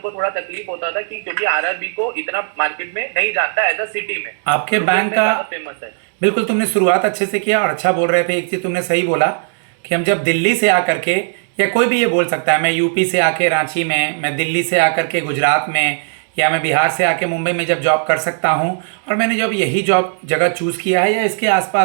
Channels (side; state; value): left; silent; digital silence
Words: थोड़ा तकलीफ होता था कि क्योंकि RRB को इतना मार्केट में नहीं जानता एज अ सिटी में। आपके बैंक का फेमस है। बिल्कुल, तुमने शुरुआत अच्छे से किया और अच्छा बोल रहे थे। एक चीज़ तुमने सही बोला कि हम जब दिल्ली से आकर के, या कोई भी ये बोल सकता है, मैं यूपी से आके रांची में, मैं दिल्ली से आकर के गुजरात में, या मैं बिहार से आके मुंबई में जब जॉब कर सकता हूँ, और मैंने जब यही जॉब जगह चूज़ किया है या इसके